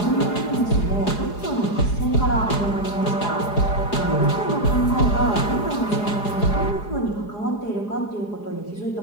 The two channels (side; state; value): right; late; 4.8 ms